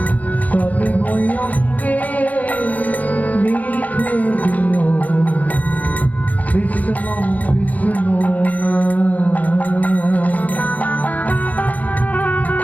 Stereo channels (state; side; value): late; right; 0.077 ms